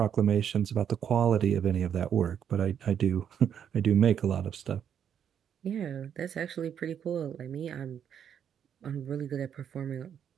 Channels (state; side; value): quieter; left; 8.6 dB